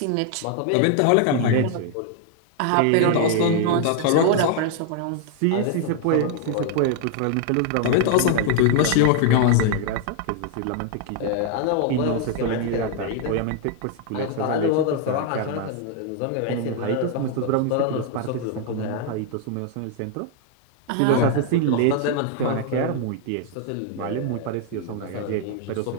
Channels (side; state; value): both; different; correlation 0.00